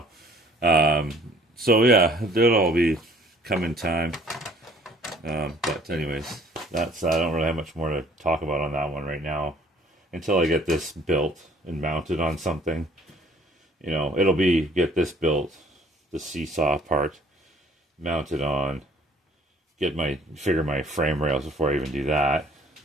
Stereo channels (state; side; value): normal; both; correlation 0.57